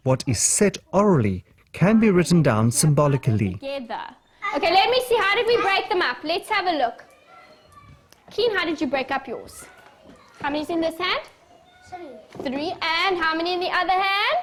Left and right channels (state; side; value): identical; both; correlation 1.00